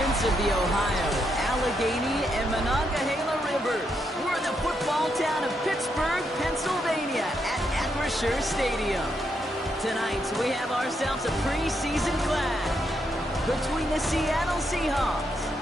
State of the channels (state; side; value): normal; both; correlation 0.79